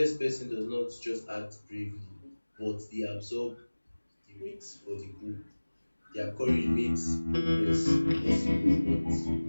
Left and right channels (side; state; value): both; inverted; correlation -1.00